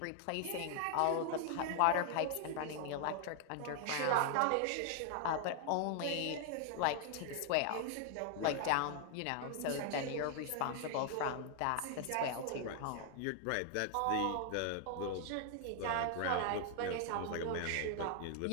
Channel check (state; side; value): different; both; correlation 0.00